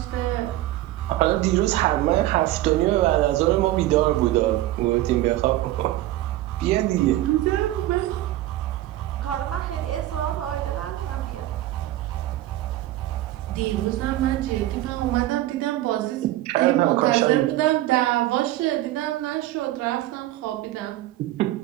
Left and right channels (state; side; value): quieter; left; 15.3 dB